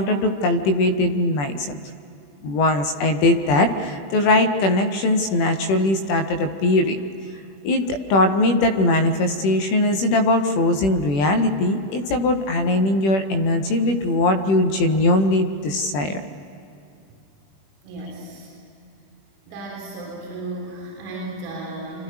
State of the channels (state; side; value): late; right; 21 ms